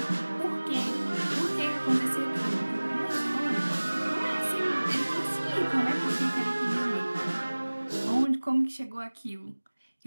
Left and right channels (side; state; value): both; inverted; correlation -1.00